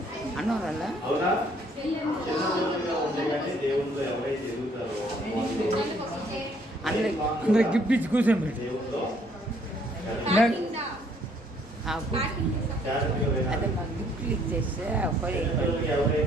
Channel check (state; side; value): normal; both; correlation 0.64